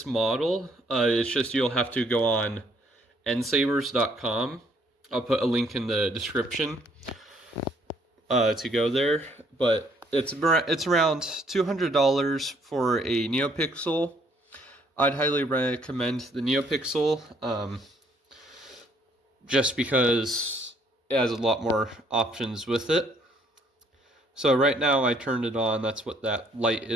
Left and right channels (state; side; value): normal; both; correlation 0.66